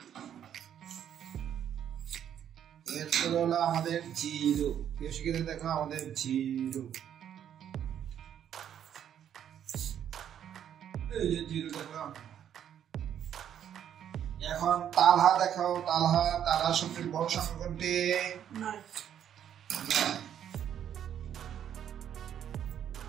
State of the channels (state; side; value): quieter; left; 9.7 dB